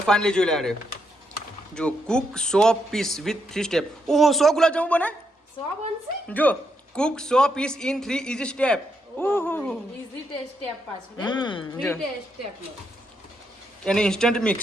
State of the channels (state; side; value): normal; both; correlation 0.79